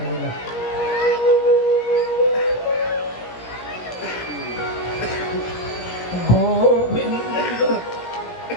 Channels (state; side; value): late; right; 17 ms